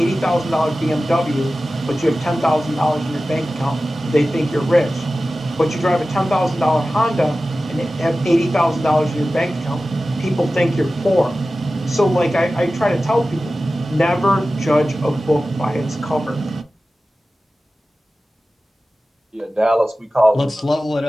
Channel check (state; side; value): normal; both; correlation 0.95